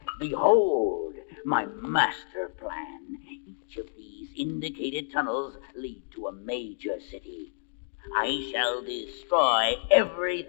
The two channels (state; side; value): silent; right; digital silence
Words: behold my master plan. Each of these indicated tunnels lead to a major city. I shall destroy